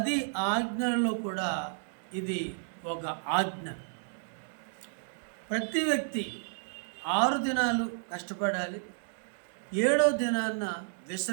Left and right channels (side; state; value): left; silent; digital silence